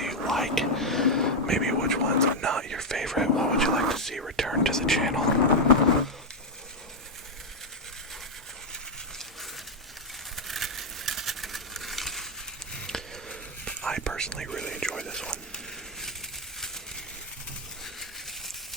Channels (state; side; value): normal; both; correlation 0.03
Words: like? Maybe which ones are not your favorite? What would you like to see return to the channel? I personally really enjoy this one.